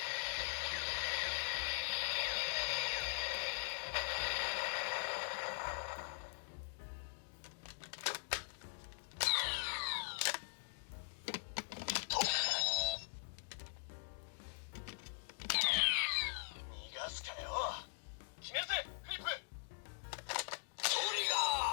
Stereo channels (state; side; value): silent; right; digital silence